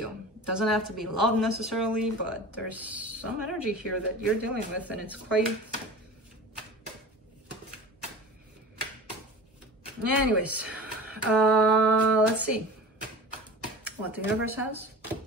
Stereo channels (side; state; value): both; normal; correlation 0.36